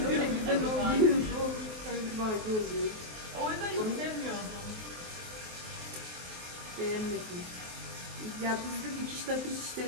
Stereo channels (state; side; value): late; left; 23 ms